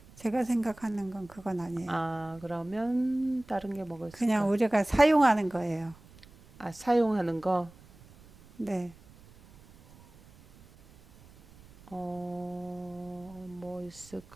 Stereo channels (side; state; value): right; noise; rumble, 24 dB below the sound